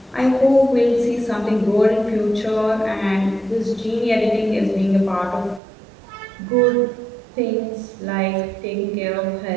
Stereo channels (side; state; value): left; drops out; at 5.6 s